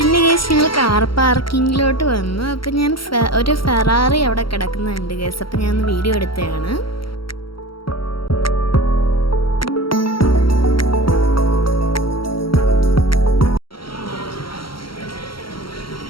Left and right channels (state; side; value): late; right; 0.74 ms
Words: ഗൈസ് ഞങ്ങൾ കാർ പാർക്കിങ്ങിലോട്ട് വന്നു. അപ്പോൾ ഞാൻ ഒരു ഫെറാറി അവിടെ കിടക്കുന്നുണ്ട് ഗൈസ്. അപ്പോൾ ഞാൻ വീഡിയോ എടുത്തതാണ്.